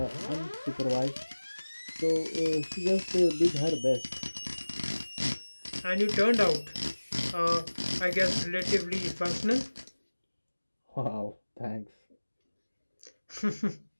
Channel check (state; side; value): inverted; both; correlation -1.00